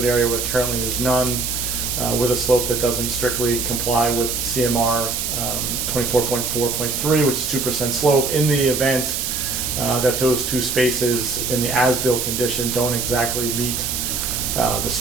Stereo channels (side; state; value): right; noise; hiss, 2 dB below the sound